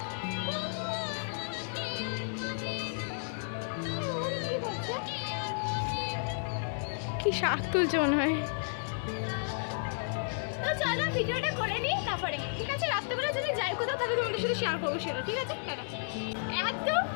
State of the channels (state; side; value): silent; right; digital silence